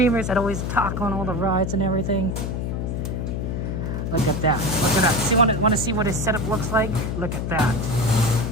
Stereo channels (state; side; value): noise; left; hum, 2 dB below the sound